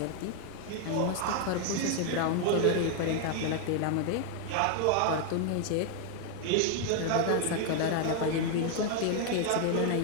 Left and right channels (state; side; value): different; both; correlation 0.00